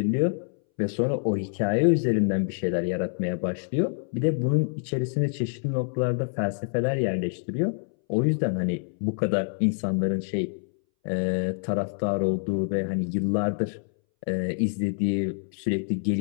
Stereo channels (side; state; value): right; silent; 61 dB below the other